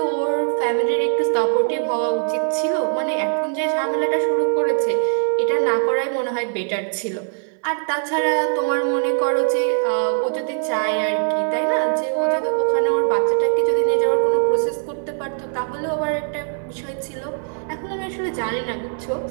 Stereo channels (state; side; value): silent; left; digital silence